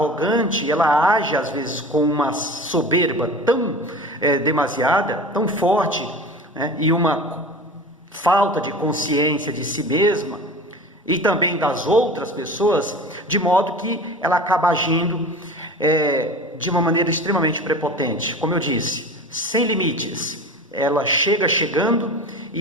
ela age às vezes com uma soberba tão demasiada, tão forte, e uma falta de consciência de si mesma, e também das outras pessoas, de modo que ela acaba agindo de uma maneira extremamente prepotente. Como eu disse, sem limites. Ela chega chegando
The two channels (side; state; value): both; normal; correlation 0.36